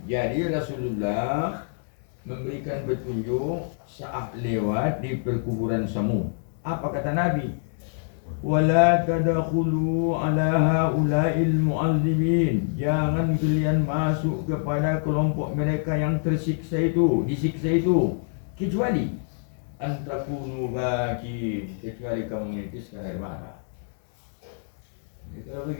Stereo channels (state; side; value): silent; right; digital silence